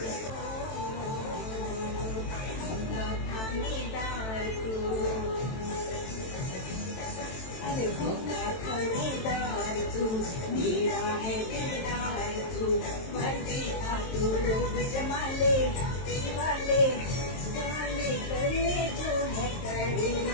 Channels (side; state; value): right; late; 23 ms